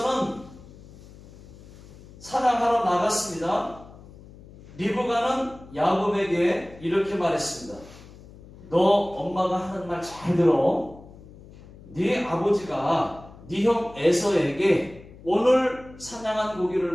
사냥하러 나갔습니다. 리브가는 야곱에게 이렇게 말했습니다. 너 엄마가 하는 말 잘 들어. 네 아버지가 네 형 에서에게 오늘 사냥한 고기를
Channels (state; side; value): noise; left; hum, 20 dB below the sound